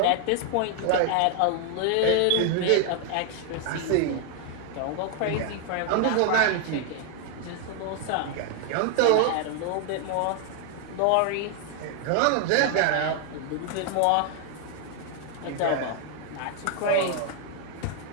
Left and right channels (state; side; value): different; both; correlation 0.00